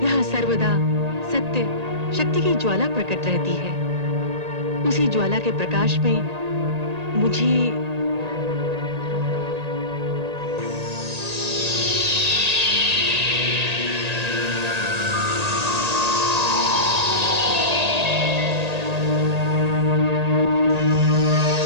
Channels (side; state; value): left; late; 1.8 ms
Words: सर्वदा सत्य, शक्ति की ज्वाला प्रकट रहती है। उसी ज्वाला के प्रकाश में मुझे